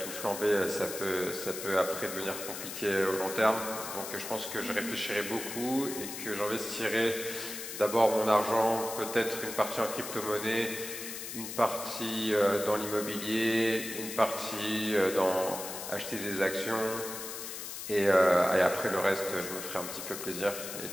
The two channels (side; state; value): left; noise; hiss, 8 dB below the sound